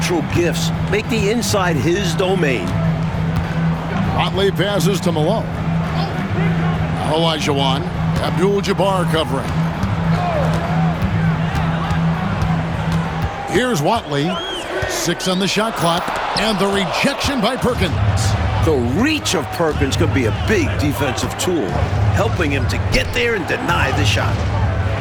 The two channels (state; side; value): identical; both; correlation 1.00